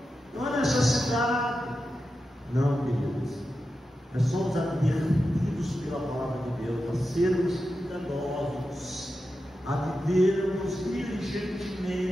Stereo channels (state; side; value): normal; both; correlation 0.90